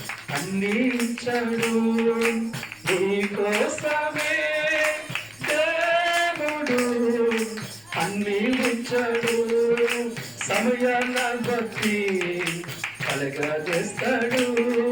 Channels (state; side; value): noise; left; rumble, 30 dB below the sound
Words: అన్నించాడు, నీ కోసమే దేవుడు అన్నించాడు. సమయాన్న బట్టి కలగా చేస్తాడు,